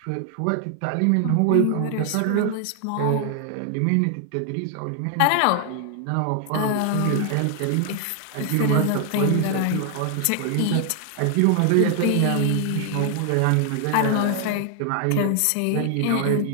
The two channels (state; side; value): different; both; correlation 0.00